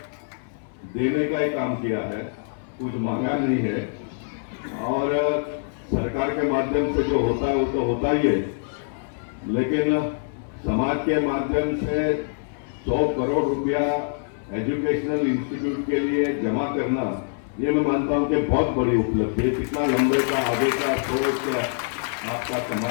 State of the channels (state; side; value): silent; right; 60 dB below the other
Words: देने का ही काम किया है, कुछ मांगा नहीं है। और सरकार के माध्यम से जो होता है वो तो होता ही है, लेकिन समाज के माध्यम से 100 करोड़ रुपया एजुकेशनल इंस्टीट्यूट के लिए जमा करना, ये मैं मानता हूं कि बहुत बड़ी उपलब्धि है। कितना लंबे का आगे का सोच आपका